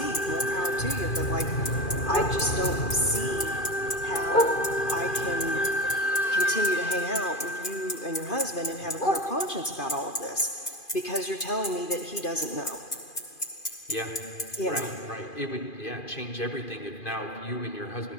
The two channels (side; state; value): right; late; 2.5 ms